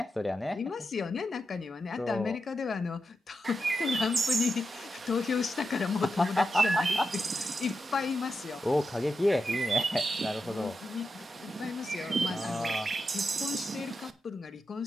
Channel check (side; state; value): both; normal; correlation 0.87